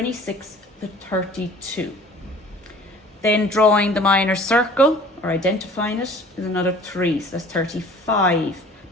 to 32. Then drawing the minor circle, or identifying it, is another 3, so that's 35.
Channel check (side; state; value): both; normal; correlation 0.49